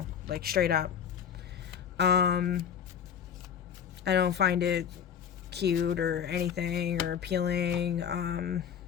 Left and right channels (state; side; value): quieter; right; 8.2 dB